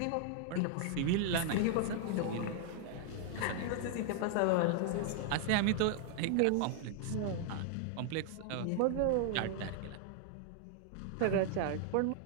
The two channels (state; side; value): different; both; correlation 0.00